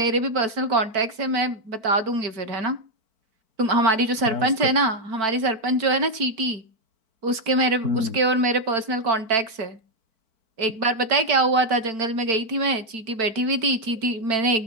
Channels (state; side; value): late; left; 4.5 ms